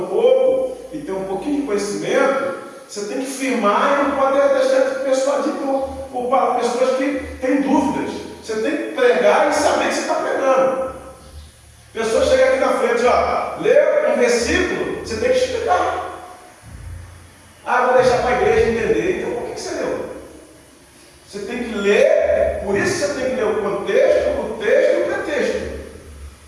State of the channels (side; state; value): both; identical; correlation 1.00